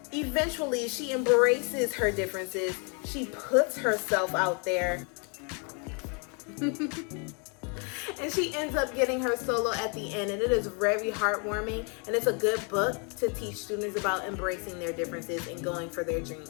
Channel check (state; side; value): quieter; right; 36.6 dB